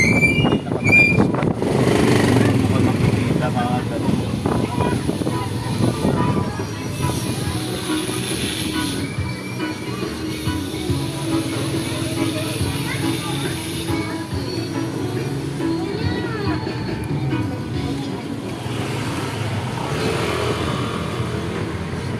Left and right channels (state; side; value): identical; both; correlation 1.00